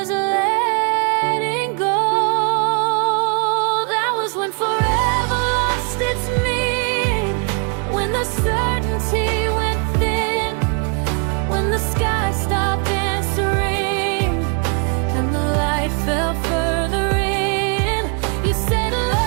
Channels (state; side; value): quieter; left; 38.1 dB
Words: letting go. That was when forever lost its meaning, when the certainty went thin, when the sky stopped